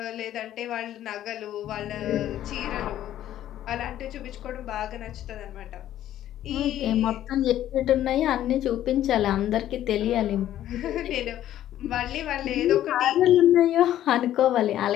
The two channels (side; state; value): right; quieter; 12.3 dB